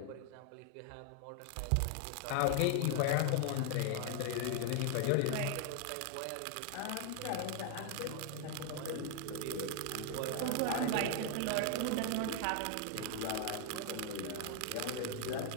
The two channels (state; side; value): different; both; correlation 0.00